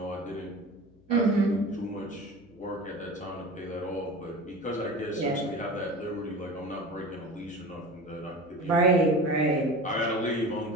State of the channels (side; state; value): left; noise; hum, 28 dB below the sound